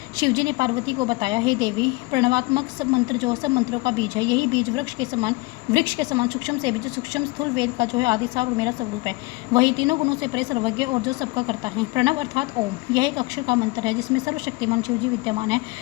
शिवजी ने पार्वती को बताया, हे देवी, प्रणवात्मक सब मंत्र जो सब मंत्रों का बीज है, यही बीज वृक्ष के समान सूक्ष्म से बीज सूक्ष्म स्थूल वेद का जो है आदिसार और मेरा स्वरूप है। वही तीनों गुणों से परे सर्वज्ञ और जो सबका करता है। प्रणव अर्थात ओम, यह एक अक्षर का मंत्र है जिसमें सर्वशक्तिमान शिवजी विद्यमान है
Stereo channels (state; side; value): quieter; right; 23.6 dB